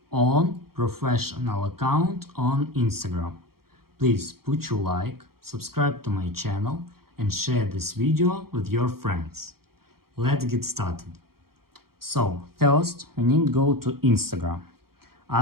on professional account on Instagram. Please put your like, subscribe to my channel and share this video with your friends. Let's get started. So first we need to go to Instagram.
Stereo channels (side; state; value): left; late; 0.94 ms